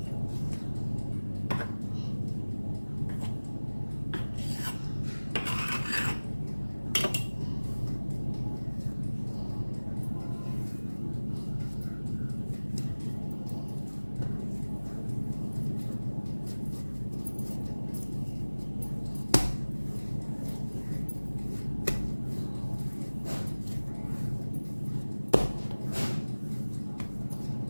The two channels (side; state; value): both; inverted; correlation -1.00